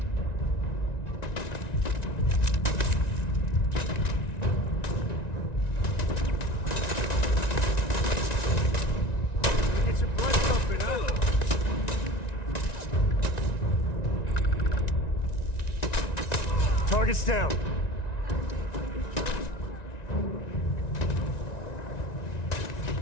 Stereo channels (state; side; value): late; right; 1.9 ms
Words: Get your blood pumping, huh? Target's down.